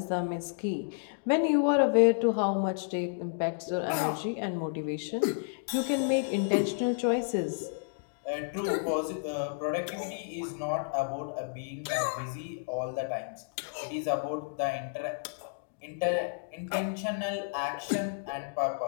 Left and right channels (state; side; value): silent; right; digital silence